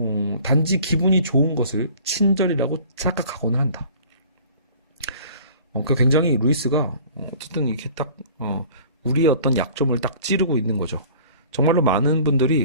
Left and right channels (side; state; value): both; inverted; correlation -0.48